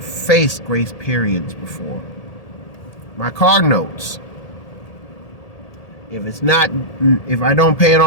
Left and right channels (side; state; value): right; late; 1.8 ms